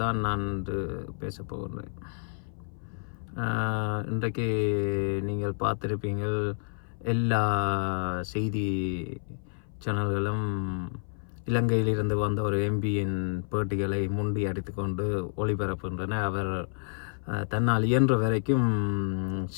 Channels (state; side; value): silent; right; 57 dB below the other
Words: நான் இன்று பேசப் போகின்றேன். இன்றைக்கு நீங்கள் பார்த்திருப்பீங்கள், எல்லா செய்தி சேனல்களும் இலங்கையிலிருந்து வந்த ஒரு எம்பியின் பேட்டிகளை முண்டி அடித்துக்கொண்டு ஒளிபரப்புகின்றன. அவர் தன்னால் இயன்ற வரைக்கும்